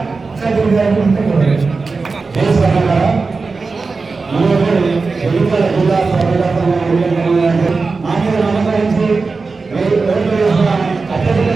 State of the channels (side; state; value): left; quieter; 4.2 dB